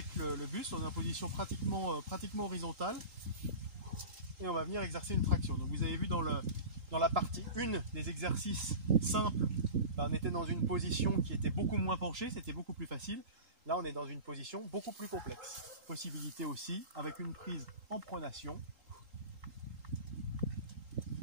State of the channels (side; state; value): left; late; 3.8 ms